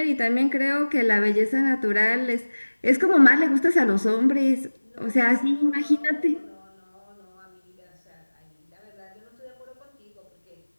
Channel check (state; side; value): inverted; both; correlation -1.00